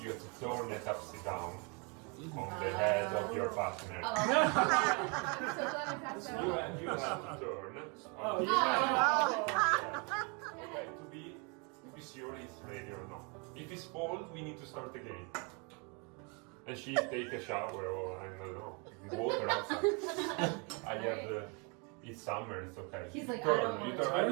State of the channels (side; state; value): left; quieter; 33.3 dB